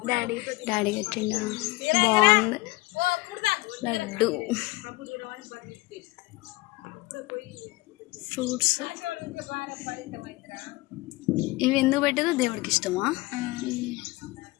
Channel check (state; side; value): quieter; right; 21.6 dB